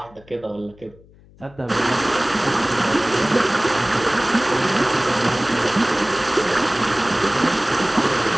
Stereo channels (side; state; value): left; noise; hum, 26 dB below the sound